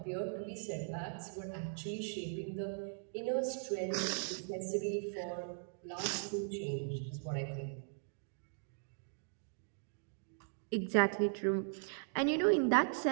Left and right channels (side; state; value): left; silent; digital silence